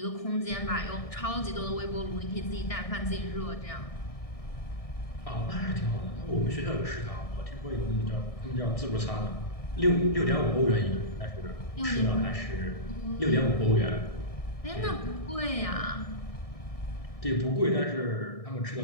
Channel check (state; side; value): late; right; 1.6 ms